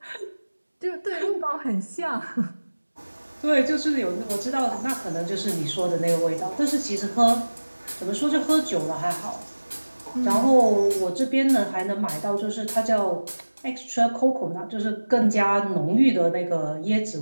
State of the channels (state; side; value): inverted; both; correlation -1.00